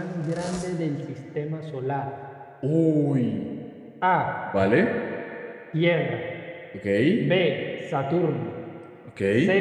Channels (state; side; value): identical; both; correlation 1.00